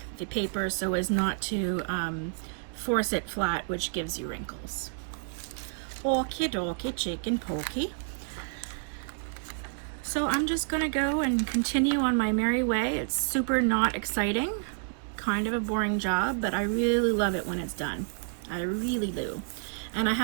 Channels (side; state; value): left; silent; digital silence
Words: the paper so as not to force it flat, which gives you wrinkles. Okie dokie, chicken pokey. So I'm just gonna go and continue on my merry way. It's super not exciting, kind of a boring job, but I really love it when it's done. I really do. And I